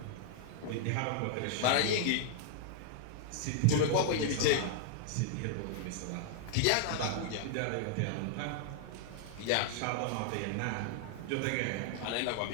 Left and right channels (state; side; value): different; both; correlation 0.00